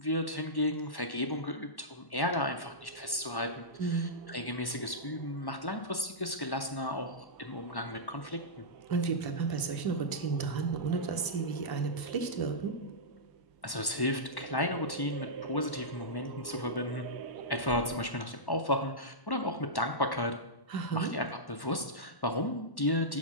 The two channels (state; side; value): late; right; 1.1 ms